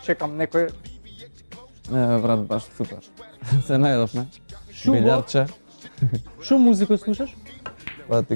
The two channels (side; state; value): both; inverted; correlation -1.00